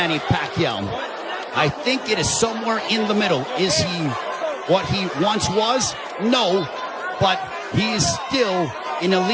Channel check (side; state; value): both; identical; correlation 1.00